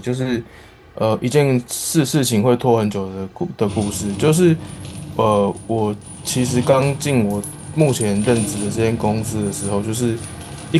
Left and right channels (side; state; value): both; identical; correlation 1.00